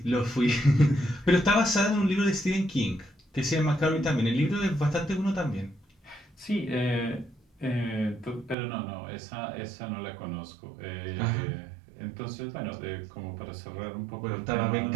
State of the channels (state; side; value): drops out; left; at 8.6 s